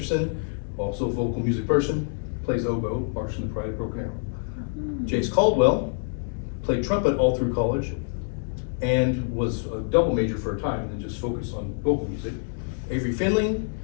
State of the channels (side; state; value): right; silent; 61 dB below the other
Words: also a vocal music person, plays oboe, march in the Pride of Broken Arrow. Jace Caldwell played trumpet all through college and was a double major for a time and then just focused on vocal music. Avery Finley